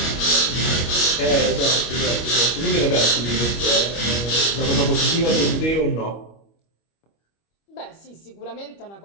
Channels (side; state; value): right; late; 25 ms